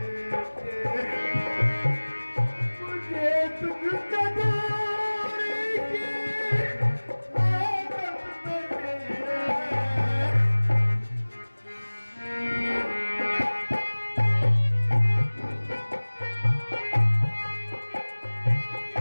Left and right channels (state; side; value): inverted; both; correlation -1.00